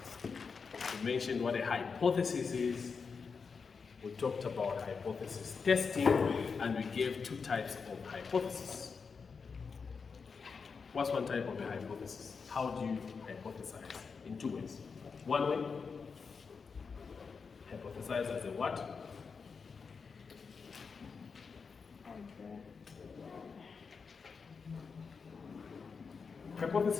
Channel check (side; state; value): right; quieter; 5.3 dB